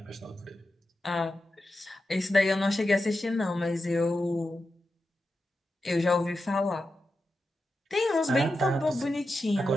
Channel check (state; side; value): normal; both; correlation 0.90